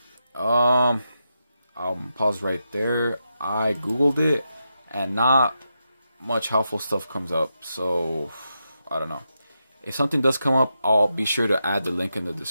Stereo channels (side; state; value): both; inverted; correlation -0.86